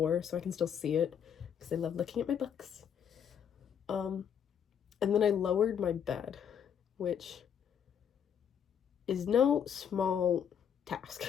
so I can still see it because I love looking at my books. And then I lowered my bed, which is no small task.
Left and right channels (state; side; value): quieter; right; 8.3 dB